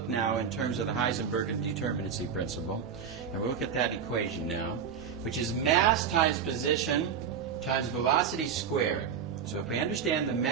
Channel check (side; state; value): left; quieter; 7.2 dB